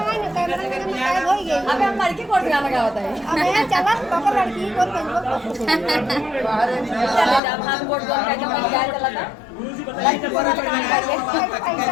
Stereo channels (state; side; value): drops out; right; at 7.4 s